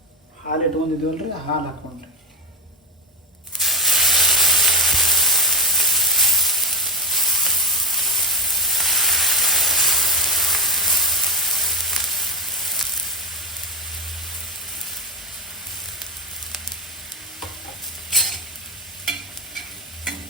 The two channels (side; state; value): both; normal; correlation 0.18